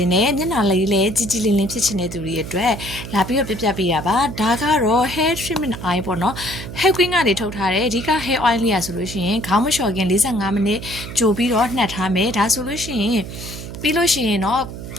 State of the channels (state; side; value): noise; right; hum, 10 dB below the sound